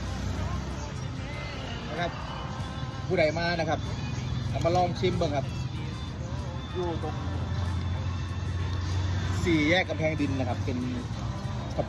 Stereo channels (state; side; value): identical; both; correlation 1.00